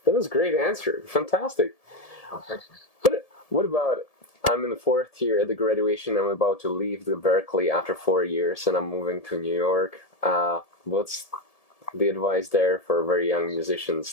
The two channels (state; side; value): late; right; 1.7 ms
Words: was a great answer. Fantastic. Oh, thanks. But what about, I'm in the 4th year at the graduation. I'm about to leave the Berkeley after 4 years, and I'm moving to New York. What's the advice there for very young musicians